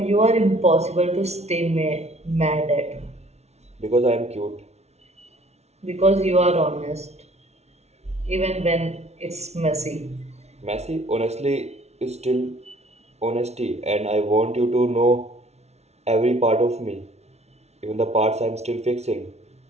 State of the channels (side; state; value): left; late; 0.31 ms